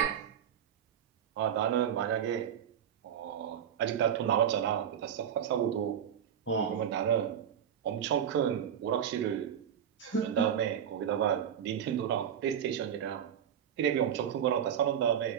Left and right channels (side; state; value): left; quieter; 9.0 dB